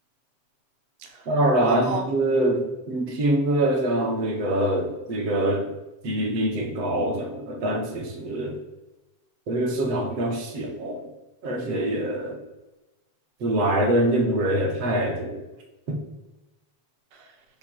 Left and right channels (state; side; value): late; left; 7.7 ms